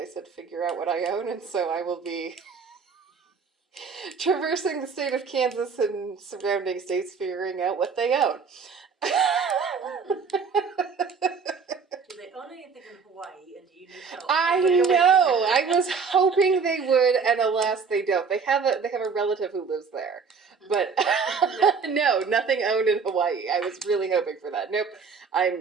said figure out what I own, and so I will be traversing the state of Kansas and surrounding states figuring out what they own. Do they own anything in Hawaii, and do you need help? I know. I was hoping they would, and alas, they don't. They have a relative who lives there, but no, nothing owned in Hawaii. I was really hoping for that. Nope.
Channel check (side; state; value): left; quieter; 5.5 dB